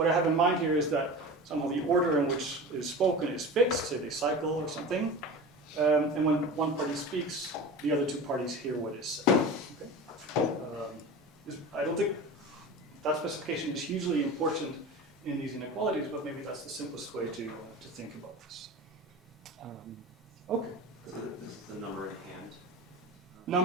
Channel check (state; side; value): normal; both; correlation 0.32